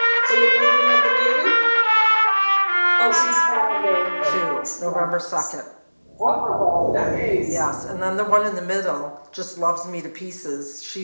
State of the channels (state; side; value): inverted; both; correlation -1.00